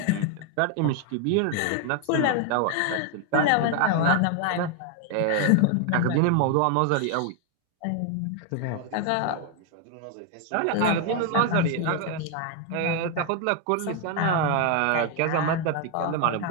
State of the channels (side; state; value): both; different; correlation 0.00